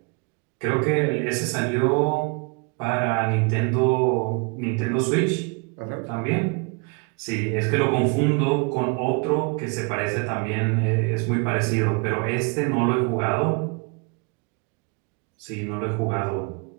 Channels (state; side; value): quieter; left; 32.4 dB